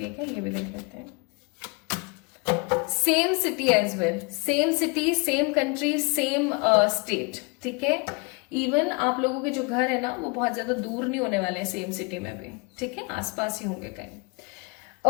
है क्या, ये भी देख लेते हैं। Same city as well, same city, same country, same state. ठीक है। इवन आप लोगों के जो घर है ना वो बहुत ज्यादा दूर नहीं होने वाले हैं, सेम सिटी में भी। ठीक है, आसपास ही होंगे कहीं।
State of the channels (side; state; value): right; quieter; 29.9 dB